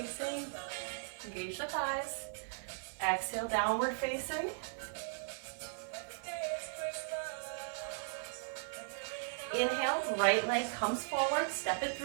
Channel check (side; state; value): left; silent; digital silence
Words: Engage the thighs. Exhale, downward facing. Inhale, right leg comes forward. Step it